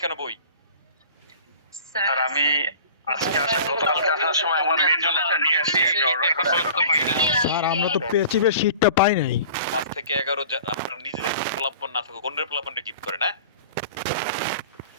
কেন বই? স্যার আমি আজকে গতকালকে আসার সময় আমার মেয়ের জন্য একটা নিয়ে আসি, আমি অর্ডার করতে পারি না। স্যার আমরা তো পেচিবের শীটটা পাই নাই। 5 থেকে 11 আপনার নিজেদের পোলাপান না থাকুক, অন্যের পোলাপানকে গিফট করেন, হ্যাঁ?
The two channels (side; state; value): both; inverted; correlation -0.43